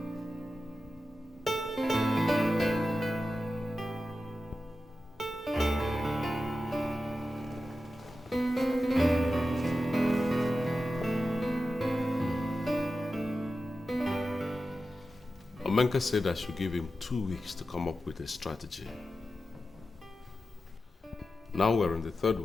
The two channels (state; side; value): normal; both; correlation 0.92